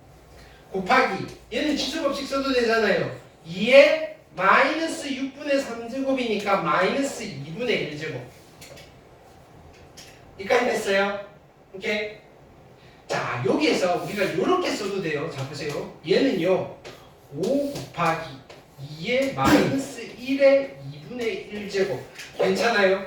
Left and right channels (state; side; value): identical; both; correlation 1.00